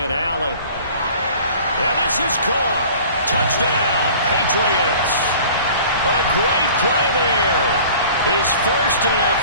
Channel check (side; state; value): both; inverted; correlation -0.46